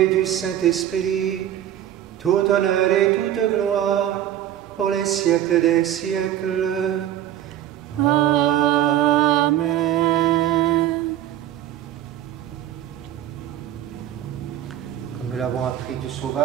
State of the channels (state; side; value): quieter; left; 11.8 dB